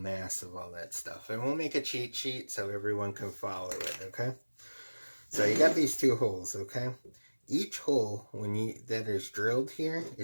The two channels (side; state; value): both; inverted; correlation -1.00